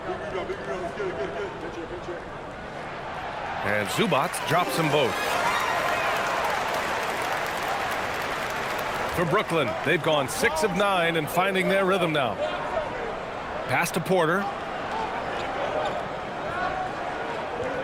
And Zubac drops them both. For Brooklyn, they've gone 6 of 9 and finding their rhythm now. Pass to Porter.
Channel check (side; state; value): both; identical; correlation 1.00